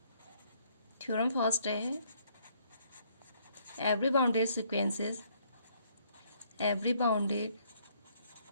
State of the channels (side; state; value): both; inverted; correlation -0.67